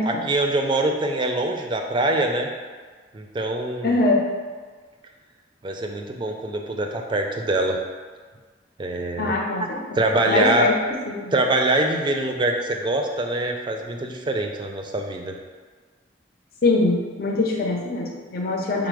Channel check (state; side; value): normal; both; correlation 0.21